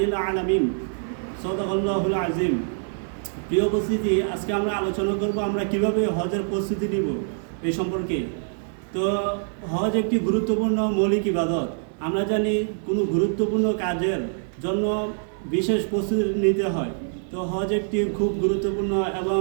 العالمين. সাদাকাল্লাহুল আযীম। প্রিয় উপস্থিতি, আজকে আমরা আলোচনা করব আমরা কিভাবে হজের প্রস্তুতি নিব এই সম্পর্কে। তো হজ একটি গুরুত্বপূর্ণ মৌলিক ইবাদত। আমরা জানি কোনো গুরুত্বপূর্ণ কাজের জন্য বিশেষ প্রস্তুতি নিতে হয়। তো হজ একটি খুব গুরুত্বপূর্ণ এবং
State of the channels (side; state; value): left; silent; digital silence